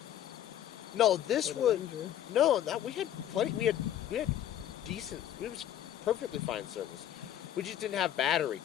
No, this Or the was ranger. no. We had plenty. We had decent. It was perfectly fine service. We just didn't have battery.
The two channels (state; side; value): quieter; right; 11.2 dB